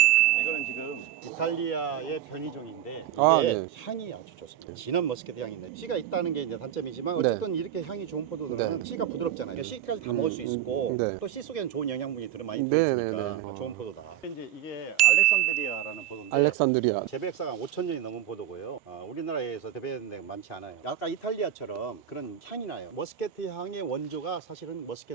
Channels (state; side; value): quieter; left; 11.3 dB